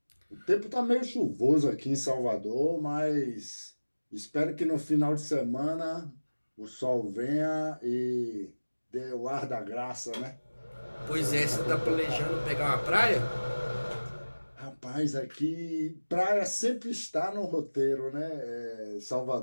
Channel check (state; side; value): inverted; both; correlation -1.00